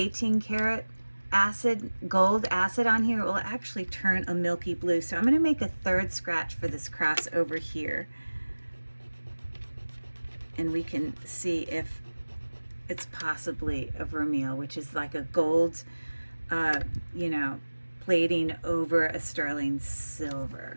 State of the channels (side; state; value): both; inverted; correlation -1.00